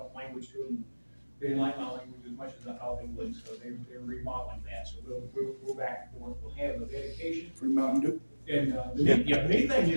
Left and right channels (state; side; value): inverted; both; correlation -1.00